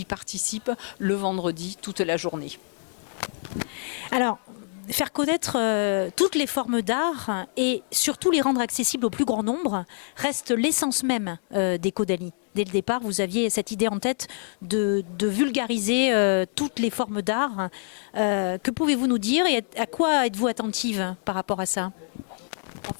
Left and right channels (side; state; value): right; silent; 61 dB below the other